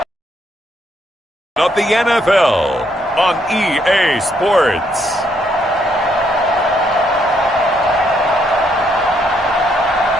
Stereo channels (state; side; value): normal; both; correlation 0.73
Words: of the NFL on EA Sports.